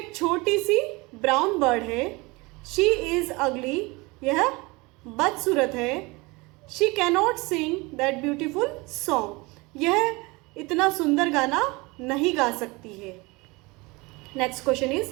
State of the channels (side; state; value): left; quieter; 24.7 dB